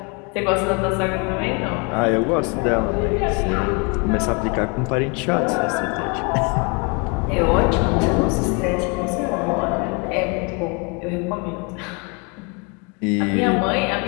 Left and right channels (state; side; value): quieter; right; 31.4 dB